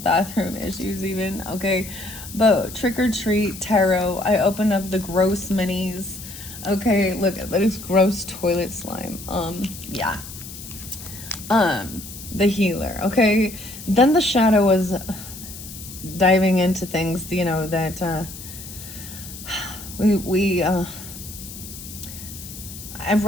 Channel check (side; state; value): left; noise; hiss, 13 dB below the sound